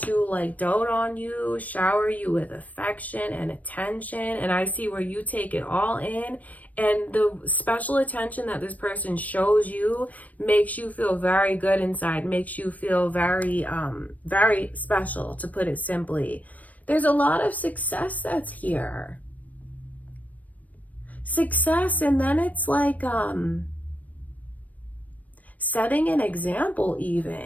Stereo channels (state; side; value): late; right; 0.072 ms